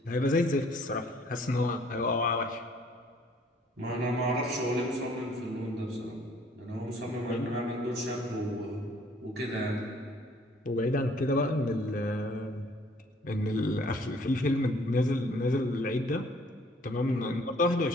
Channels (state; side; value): normal; both; correlation 0.59